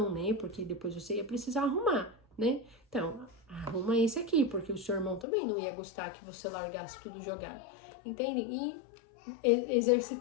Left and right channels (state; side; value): drops out; right; at 5.2 s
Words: né? Porque depois você ia precisar arrumar, né? Então, arruma esse aqui, porque o seu irmão também não ia gostar que você largasse tudo jogado. Entendem? E